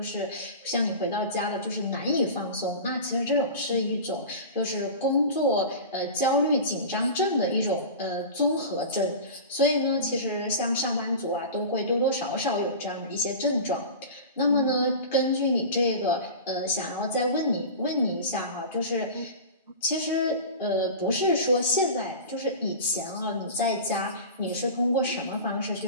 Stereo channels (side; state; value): both; inverted; correlation -0.32